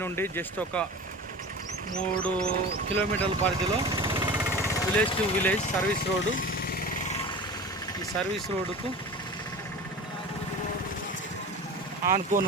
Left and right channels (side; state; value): both; normal; correlation 0.34